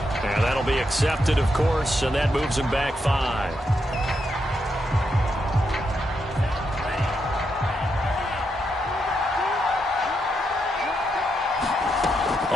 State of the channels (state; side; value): normal; both; correlation 0.82